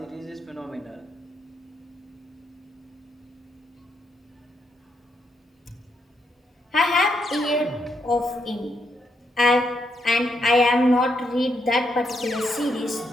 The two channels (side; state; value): both; normal; correlation 0.78